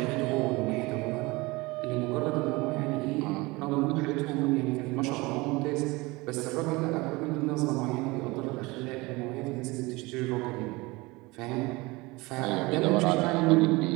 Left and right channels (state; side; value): quieter; left; 23.2 dB